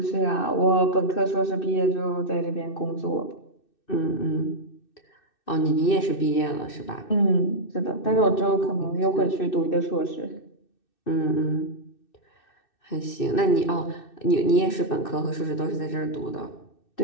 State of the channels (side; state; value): right; late; 2.6 ms